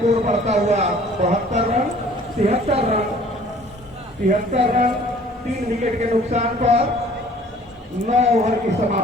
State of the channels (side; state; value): both; normal; correlation 0.53